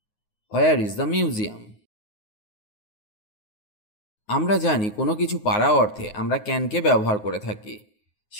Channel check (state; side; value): late; right; 9.5 ms